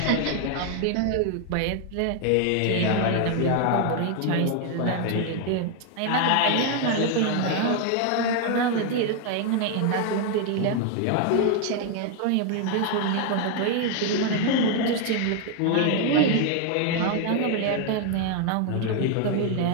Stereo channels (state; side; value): different; both; correlation 0.01